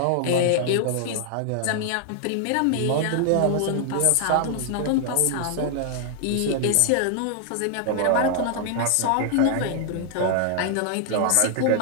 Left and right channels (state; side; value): different; both; correlation 0.00